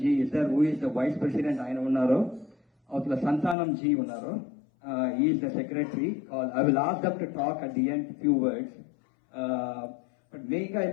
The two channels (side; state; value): right; drops out; at 3.6 s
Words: is there, who is the Vice President. I know Santanam ji unnaro. He is the Secretary. I will ask them to talk at the end few words. But